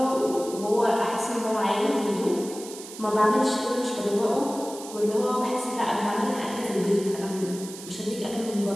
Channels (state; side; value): noise; right; hiss, 14 dB below the sound